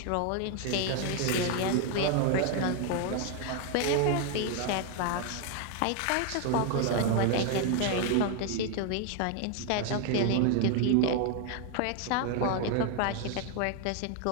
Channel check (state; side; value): different; both; correlation 0.01